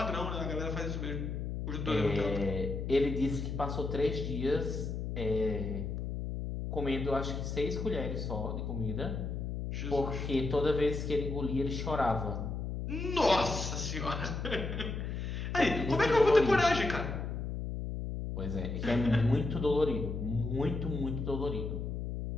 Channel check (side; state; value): left; noise; hum, 4 dB below the sound